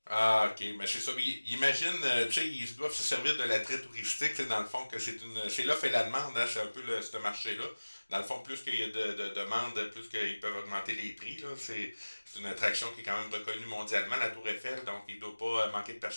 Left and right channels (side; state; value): both; inverted; correlation -1.00